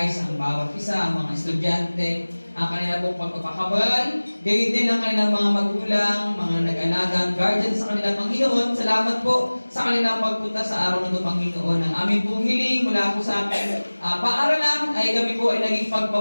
ang bawat isa, ang mga estudyante, ang kanila pong pagpapakabal, gayon din ang kanilang mga magulang, mga nag-alagang guardians sa kanilang Panginoon. Salamat po sa kanilang pagpunta sa araw na ito, Panginoon. Ang aming pong hiling mula po sa aming paaralan ay kami po ay naging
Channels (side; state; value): both; inverted; correlation -1.00